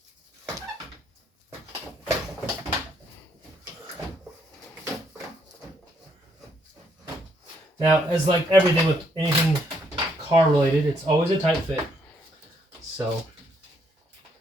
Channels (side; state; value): both; normal; correlation 0.71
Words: Now, as like everything with anything car related, it's always a tight fit. So